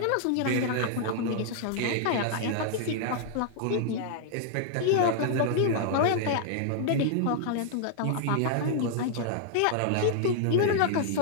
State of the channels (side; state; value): both; different; correlation -0.01